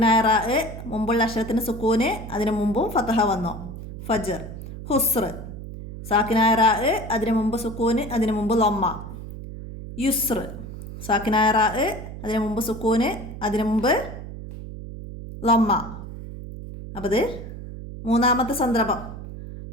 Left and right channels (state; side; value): noise; right; hum, 11 dB below the sound